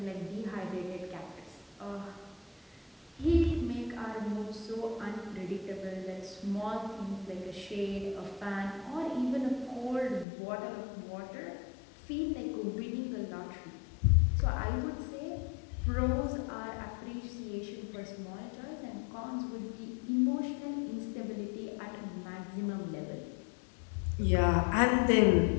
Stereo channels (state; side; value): drops out; right; at 10.2 s